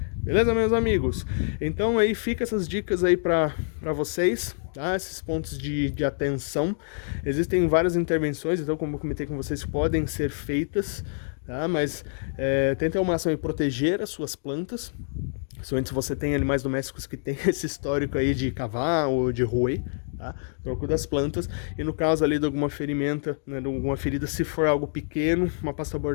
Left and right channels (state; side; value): silent; right; digital silence